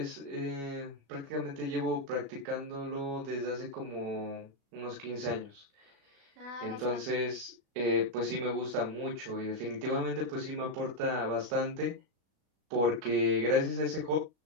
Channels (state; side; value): late; left; 36 ms